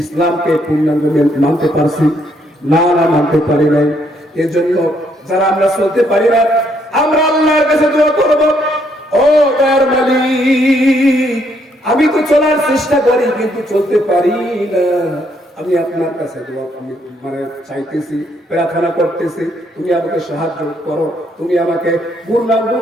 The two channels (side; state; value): both; normal; correlation 0.71